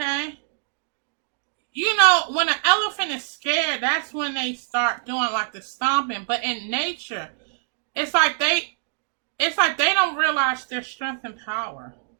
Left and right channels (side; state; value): left; silent; digital silence